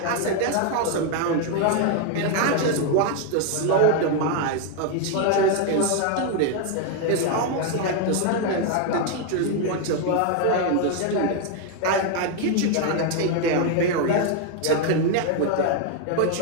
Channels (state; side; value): different; both; correlation 0.01